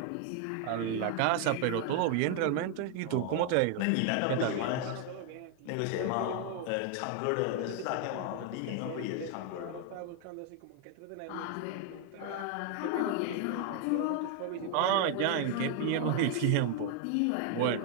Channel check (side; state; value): both; different; correlation 0.00